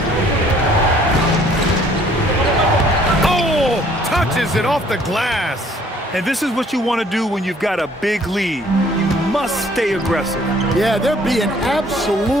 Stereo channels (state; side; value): normal; both; correlation 0.59